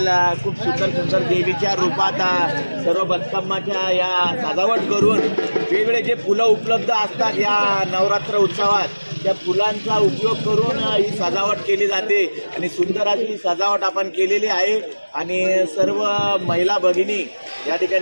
खूप सुंदर सुंदर देवीच्या रूपात सर्व बतकम्माच्या या सजावट करून वेगवेगळे जे फुलं उपलब्ध असतात या नवरात्र उत्सवात त्या फुलांचा उपयोग करून ही सजावट केली जाते आणि सुंदर अशी सजावट आपण केलेली आहे आणि सर्व महिला भगिनी या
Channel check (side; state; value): both; inverted; correlation -1.00